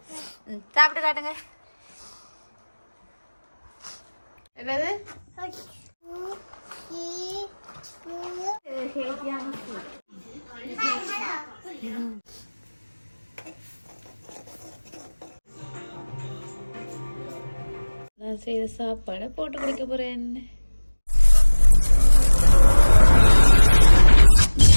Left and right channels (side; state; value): both; inverted; correlation -1.00